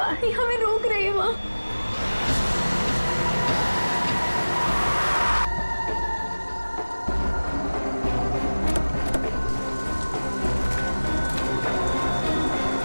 हमें रोक रही है माँ।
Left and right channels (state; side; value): inverted; both; correlation -1.00